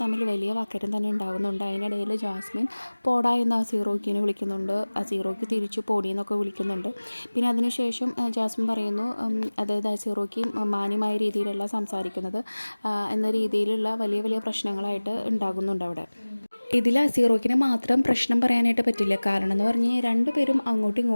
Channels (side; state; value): both; inverted; correlation -1.00